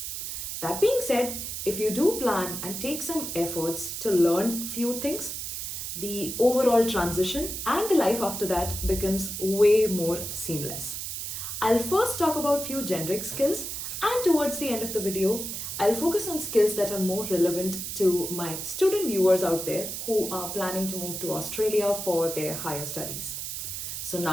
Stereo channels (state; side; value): noise; right; hiss, 5 dB below the sound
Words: That being said, if you do plan and take some efforts to learn few things, the overall transition and the life after that becomes way more seamless. I'll first talk about few generic skills, and towards the end of the video, I'll focus on skills that are more relevant to my student viewers out there who are planning to move to Australia for their higher studies. So